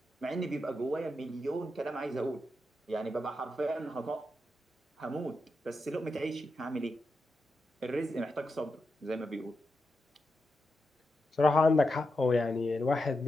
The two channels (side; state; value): both; normal; correlation 0.88